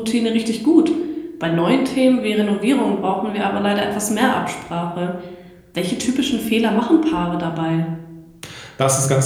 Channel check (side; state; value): both; identical; correlation 1.00